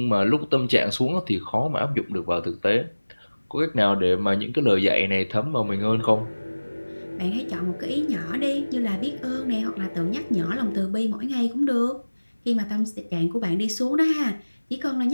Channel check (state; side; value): inverted; both; correlation -1.00